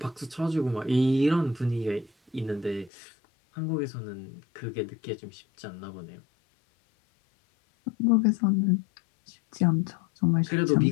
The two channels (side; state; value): right; drops out; at 2.9 s